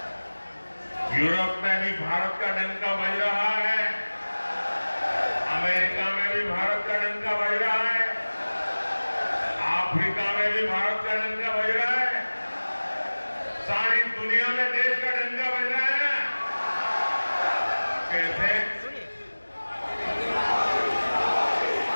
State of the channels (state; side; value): inverted; both; correlation -1.00